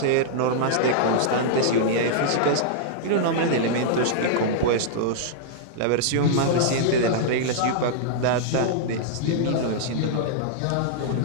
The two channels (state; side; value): different; both; correlation -0.02